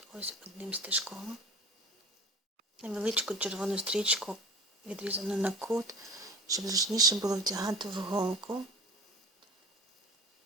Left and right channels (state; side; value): normal; both; correlation 0.37